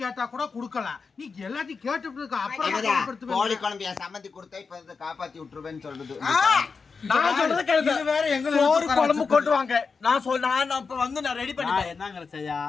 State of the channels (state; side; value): quieter; right; 5.0 dB